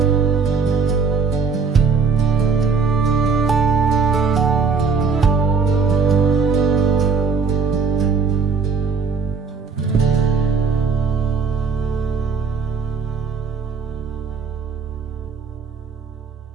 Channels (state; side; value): quieter; left; 5.3 dB